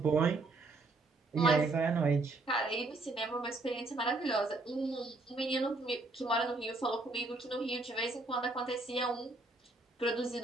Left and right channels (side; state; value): left; quieter; 3.2 dB